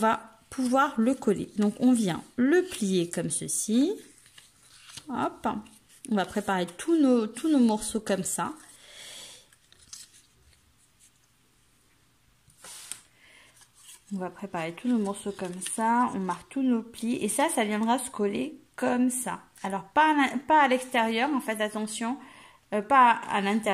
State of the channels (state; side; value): identical; both; correlation 1.00